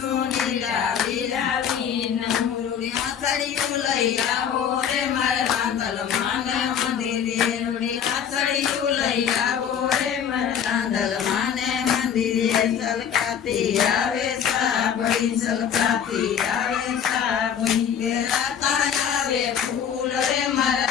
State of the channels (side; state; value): right; quieter; 8.3 dB